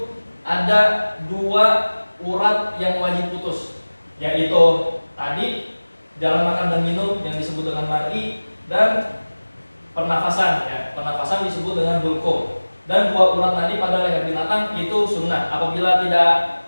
ada dua urat yang wajib putus, yaitu tadi jalan makan dan minum yang disebut dengan mar'i, dan pernafasan ya, pernafasan disebut dengan hulqum. Dan dua urat nadi pada leher binatang itu sunnah. Apabila tidak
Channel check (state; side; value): inverted; both; correlation -1.00